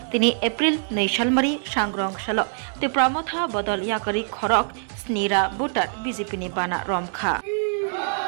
তিনি এপ্রিল 2 সালমারি सांग्रं साल ত্রিপুরা মথা বদল ইয়াকারি খরক স্নিরা বুটার বিজেপিনি বানা রমখা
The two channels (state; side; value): silent; left; digital silence